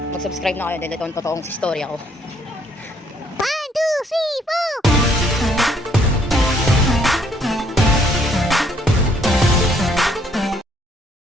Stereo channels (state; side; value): normal; both; correlation 0.67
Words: mag-subscribe na kayo dahil ito ang totoong story ako. 1, 2, 3, 4